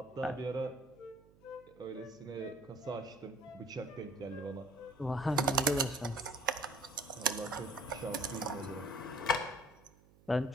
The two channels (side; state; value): right; noise; hum, 26 dB below the sound